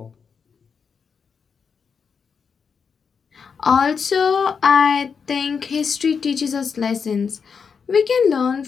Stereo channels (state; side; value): quieter; right; 6.0 dB